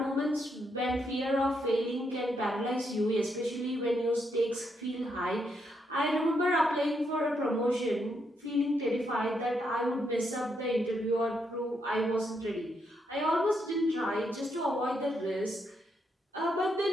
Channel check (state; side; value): normal; both; correlation 0.78